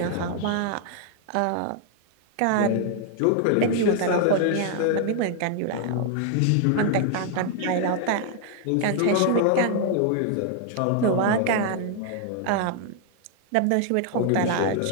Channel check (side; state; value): both; different; correlation 0.00